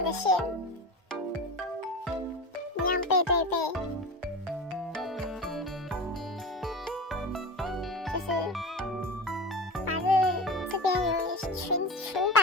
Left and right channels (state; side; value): normal; both; correlation 0.29